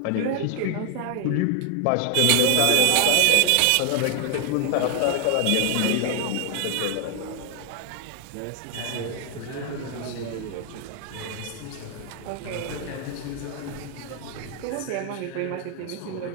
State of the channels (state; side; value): different; both; correlation 0.00